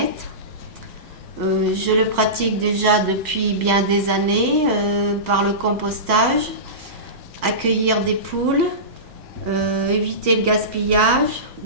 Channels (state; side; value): late; left; 2.1 ms